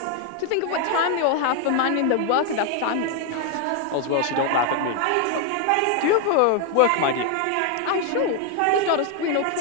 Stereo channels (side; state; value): both; different; correlation 0.01